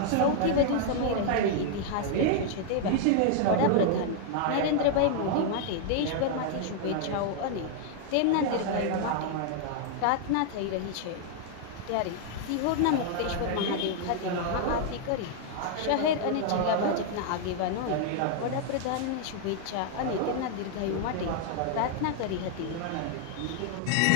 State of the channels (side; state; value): both; different; correlation 0.00